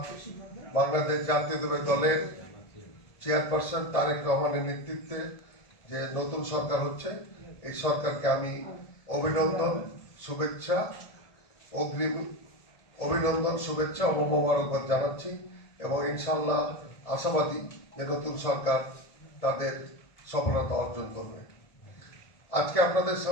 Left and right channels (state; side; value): late; right; 1.7 ms